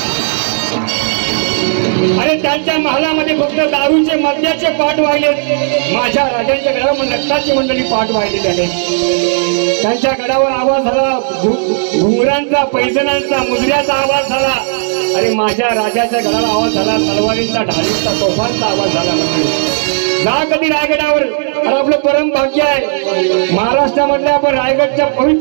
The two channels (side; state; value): left; silent; digital silence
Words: आणि त्यांच्या महालामध्ये फक्त दारूचे मद्याचे पाठ वाहिले. माझ्या राजांच्या गडावर नक्ताची मंडळी पाठ वाहिले. त्याने त्यांच्या गडावर आवाज झाला घुंगरांचा, पैजणांचा, मुजऱ्याचा आवाज झाला. आणि माझ्या राजाच्या गडाला आवाज झाला तलवारींचा, ढालींचा, तोफांचा आवाज झाला. जा कधी रायगडावर. आणि आपलं परम भाग्य आहे महाराष्ट्रामधल्या, आपण रायगडच्या